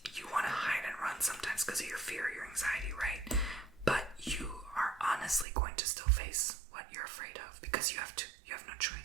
you want to hide and run sometimes because of your fear, your anxiety, right? But you are honestly going to still face what you're afraid of because you have to. You have no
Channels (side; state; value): left; drops out; at 5.5 s